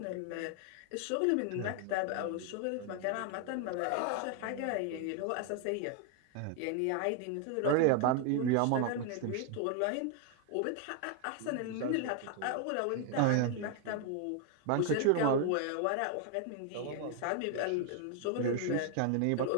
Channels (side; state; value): both; different; correlation 0.00